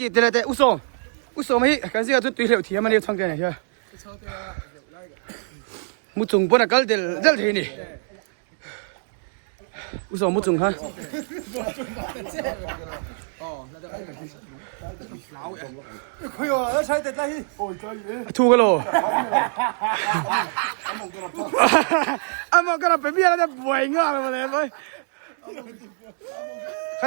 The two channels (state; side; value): silent; left; digital silence